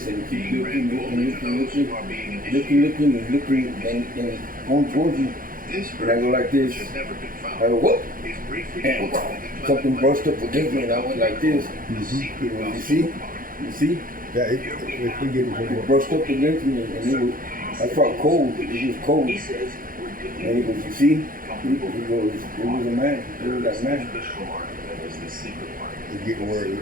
and he keeps looking, and going towards me. And I go like this. I go, what? And something brushed up against me, and I went like this. You see? Yeah, we get It brushed up against me, and I felt cold. It was cold. And he goes, you see? He goes, it was a man. It was that man. It's getting where it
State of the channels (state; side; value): late; left; 0.41 ms